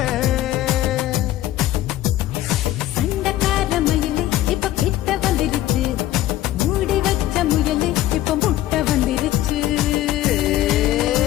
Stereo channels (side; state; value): right; quieter; 14.2 dB